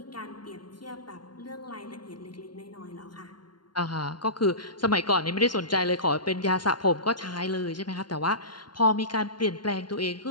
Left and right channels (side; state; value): right; late; 0.71 ms